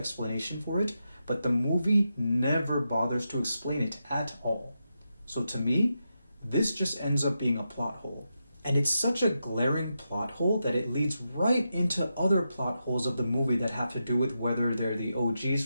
for it, but the movie never bothers to explain it at all. So to me, this just ends up being a plot hole. And it's such a glaring plot hole that it leads right into other plot holes of the movie that have to do with whether they're the OGs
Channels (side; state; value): both; inverted; correlation -0.87